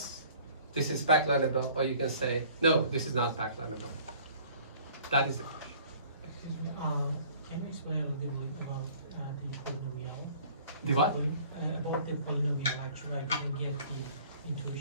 this is PAC-Learnable, or you can say, no, this is not PAC-Learnable. That is the question. Excuse me, can you explain a little bit more about the polynomial? The what? About the polynomial, actually, I didn't get the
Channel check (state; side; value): inverted; both; correlation -0.52